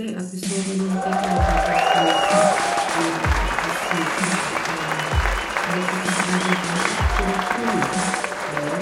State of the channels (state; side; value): identical; both; correlation 1.00